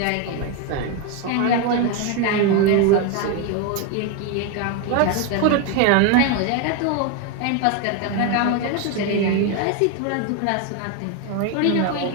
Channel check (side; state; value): both; different; correlation 0.02